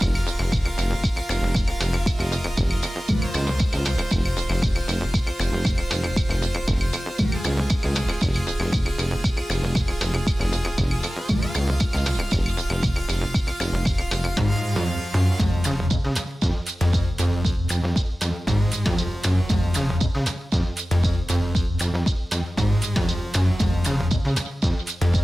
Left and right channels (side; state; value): both; normal; correlation 0.96